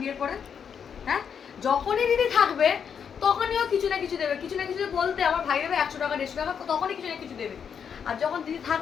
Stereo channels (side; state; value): right; quieter; 7.3 dB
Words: বিয়ের পরে। হ্যাঁ, যখনই দিদি থাকবে তখনই ও কিছু না কিছু দেবে, কিছু না কিছু বলতে আমার ভাই দেবে 100 টাকা 150 টাকা, তখনই কিছু না কিছু দেবে। আর যখন দিদি